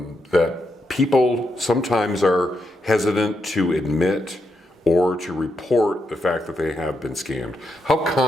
that people sometimes are hesitant to admit or to report the fact that they have been scammed. How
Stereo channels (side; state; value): both; normal; correlation 0.82